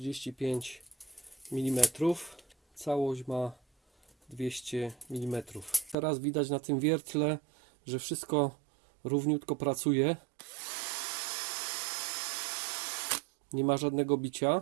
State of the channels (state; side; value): drops out; left; at 6.0 s